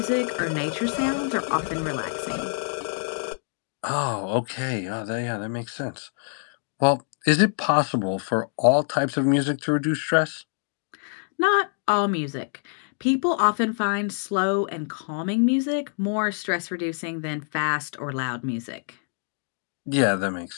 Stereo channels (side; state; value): right; silent; 61 dB below the other